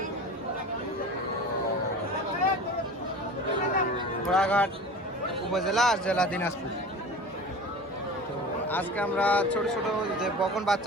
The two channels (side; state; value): both; normal; correlation 0.36